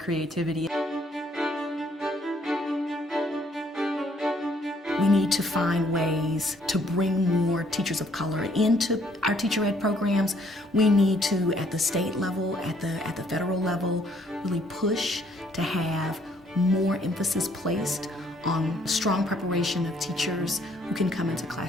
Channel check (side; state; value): both; normal; correlation 0.65